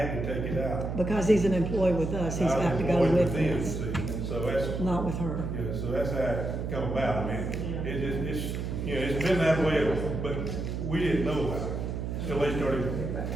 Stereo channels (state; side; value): noise; right; hum, 3 dB below the sound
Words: to take it out. Because he's an employee with us, he's got to go with them, us, see, so that's, not with her. so that's how it come about, it's been that way, but we didn't know about it, till they started